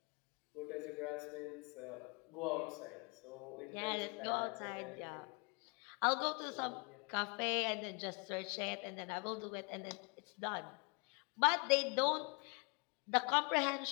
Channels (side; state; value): right; quieter; 32.6 dB